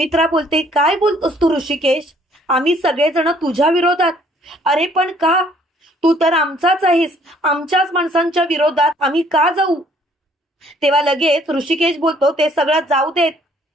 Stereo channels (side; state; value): both; normal; correlation 0.61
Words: बोलते, काय बोलतोस तू ऋषिकेश? आम्ही सगळेजण तुझ्या विरोधात? अरे पण का? तू तर आमचाच आहेस, आमच्याच माणसांच्या विरोधात आम्ही का जाऊ? तेव्हा लगेच ऋषिकेश बोलतो, ते सगळं जाऊ देत,